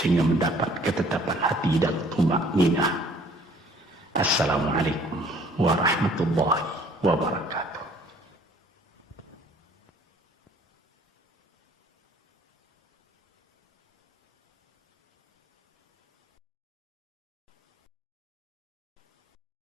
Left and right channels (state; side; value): normal; both; correlation 0.57